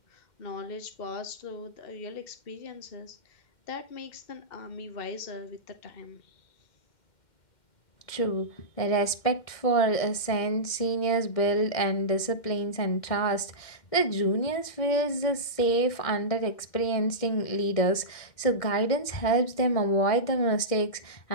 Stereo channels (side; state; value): right; late; 2.1 ms